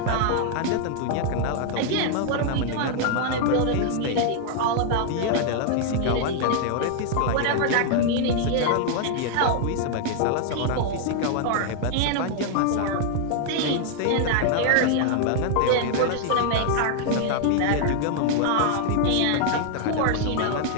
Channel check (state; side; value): different; both; correlation 0.00